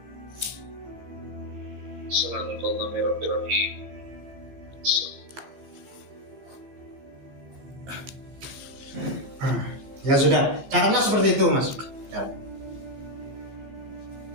Assalamualaikum. Ya sudah, caranya seperti itu, Mas. Ya.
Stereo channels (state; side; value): late; left; 15 ms